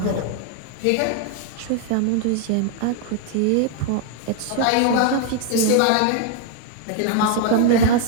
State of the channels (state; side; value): different; both; correlation 0.00